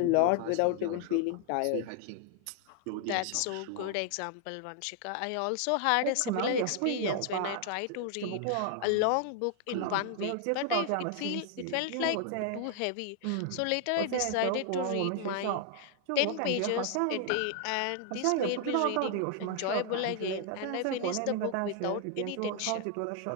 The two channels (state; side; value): different; both; correlation 0.00